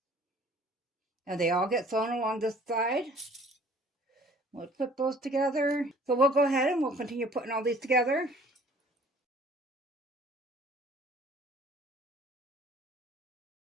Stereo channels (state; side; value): normal; both; correlation 0.53